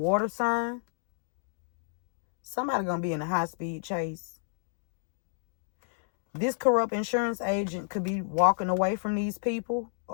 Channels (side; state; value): right; silent; digital silence